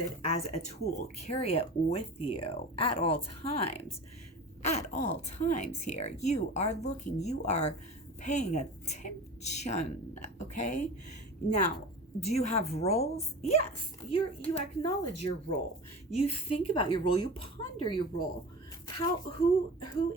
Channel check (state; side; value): normal; both; correlation 0.34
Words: as a tool. Carry it with you at all times. At all times here. You are looking. You are paying attention. Okay. Now, do you have roles? Yes. You acknowledge your role. You think about your role. You ponder your role. Who